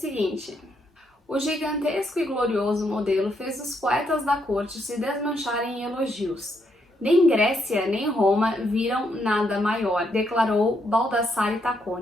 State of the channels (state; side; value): normal; both; correlation 0.76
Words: o gigantesco e glorioso modelo fez os poetas da corte se desmancharem em elogios. Nem Grécia nem Roma viram nada maior, declarou Baldassare